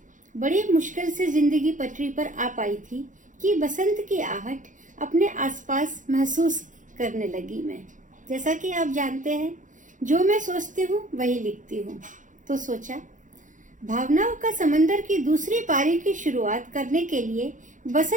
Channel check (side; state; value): left; late; 0.37 ms